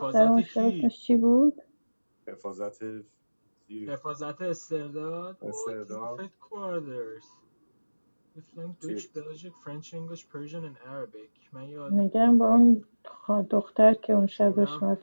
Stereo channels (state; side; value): inverted; both; correlation -1.00